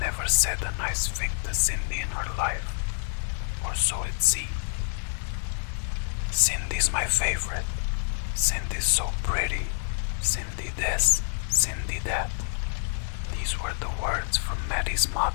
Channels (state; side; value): silent; right; digital silence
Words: said a nice thing to Cindy in her life, or so it seemed. Cindy's my favorite. Cindy's so pretty. Cindy this, Cindy that. These were the words from Maddie's